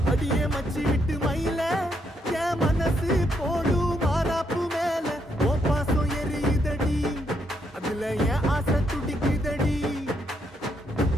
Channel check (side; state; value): both; normal; correlation 0.76